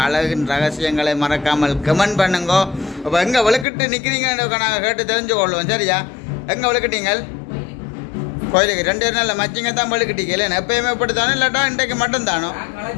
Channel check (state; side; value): drops out; right; at 3.7 s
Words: அழகின் ரகசியங்களை மறக்காமல் கமெண்ட் பண்ணுங்க. இப்போ எங்கே விளக்கிட்டு நிற்கிறீங்கன்னு நாங்கள் கேட்டு தெரிஞ்சு கொள்வோம். சரியா எங்கே விளக்கிட்டீங்கள்? கோயிலுக்கு 2 நாளில் மச்சிங்க தான் விளக்கிட்டீங்க இல்லை எப்பயுமே இப்படி தானே இல்லாட்டா இன்றைக்கு மட்டும் தானோ?